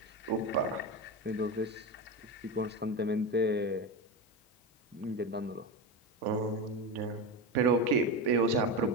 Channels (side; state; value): both; normal; correlation 0.19